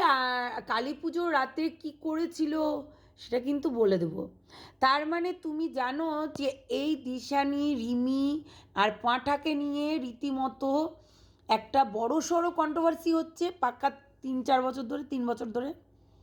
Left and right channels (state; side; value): identical; both; correlation 1.00